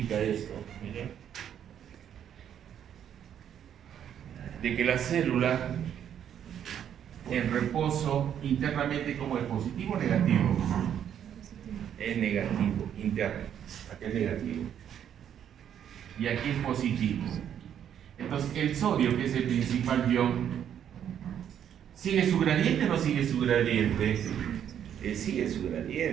esto, miren, de que la célula en reposo internamente, como es positivo o negativo, es negativo, interno, aquí es negativo y aquí es positivo. Entonces el sodio, que es el principal ion, ¿sigue su gradiente o no sigue su gradiente? Sigue su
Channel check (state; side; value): quieter; left; 9.4 dB